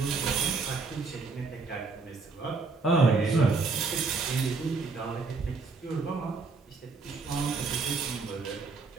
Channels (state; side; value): quieter; left; 4.2 dB